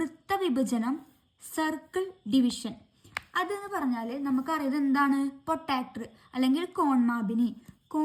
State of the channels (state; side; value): identical; both; correlation 1.00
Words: സർക്കിൾ ഡിവിഷൻ. അതെന്ന് പറഞ്ഞാൽ നമുക്കറിയാം എന്താണ് പ്രൊട്ടാക്ടർ അല്ലെങ്കിൽ കോൺമാപിനി